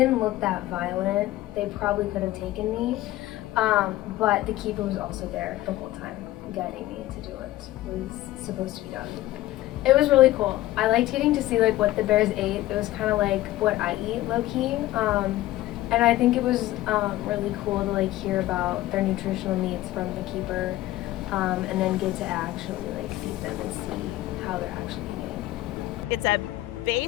look that violent. They probably could have taken me, but the keeper was also there the whole time, guiding me to do what was supposed to be done. It was really cool. I liked getting to see what the bears ate. It was kind of like what I eat, low-key. And I think it was really cool to hear about their nutritional needs from the keeper, and then get to actually feed them and see how they're actually eating. It's a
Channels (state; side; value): quieter; right; 16.0 dB